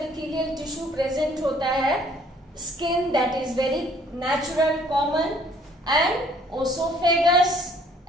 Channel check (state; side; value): normal; both; correlation 0.60